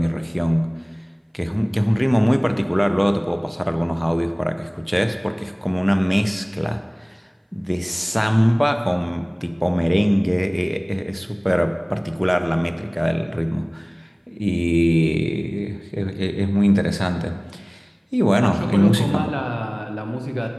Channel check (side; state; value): both; identical; correlation 1.00